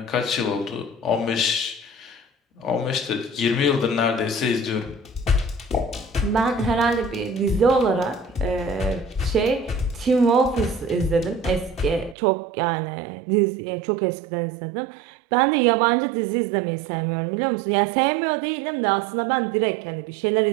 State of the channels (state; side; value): drops out; left; at 12.2 s